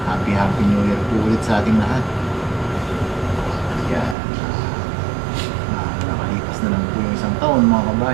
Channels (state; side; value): drops out; left; at 4.2 s